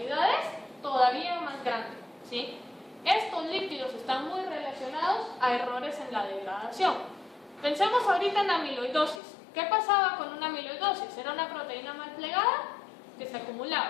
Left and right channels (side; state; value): right; drops out; at 9.2 s